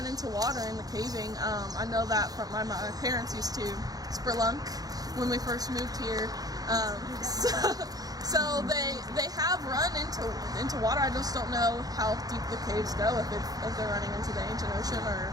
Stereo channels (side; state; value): left; late; 0.18 ms